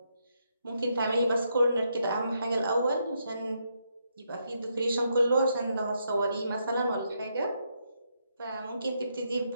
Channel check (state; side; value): inverted; both; correlation -0.79